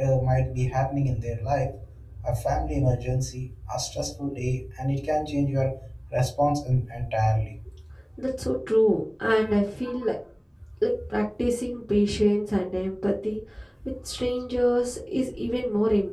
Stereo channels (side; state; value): both; identical; correlation 1.00